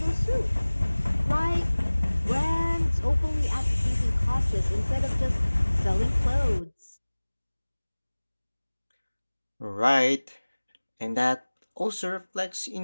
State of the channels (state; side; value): inverted; both; correlation -1.00